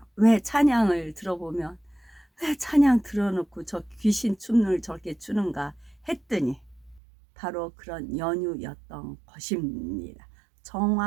왜 찬양을 들어보면 왜 찬양 틀어놓고 저 귀신 춤을 저렇게 추는가 했더니 바로 그런 연유였던 것입니다.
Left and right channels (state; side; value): drops out; left; at 7.0 s